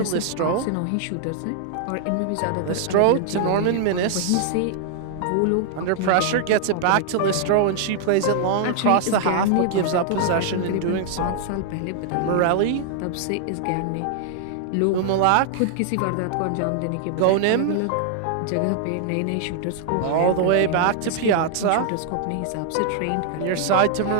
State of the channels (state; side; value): different; both; correlation -0.01